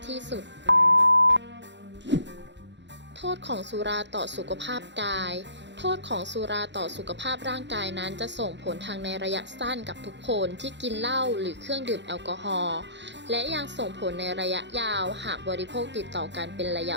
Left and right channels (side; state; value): left; late; 0.52 ms